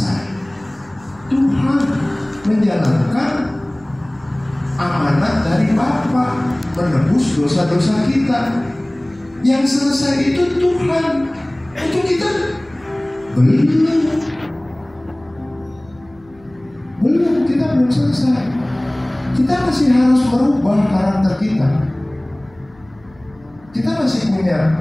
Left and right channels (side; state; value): left; noise; hum, 28 dB below the sound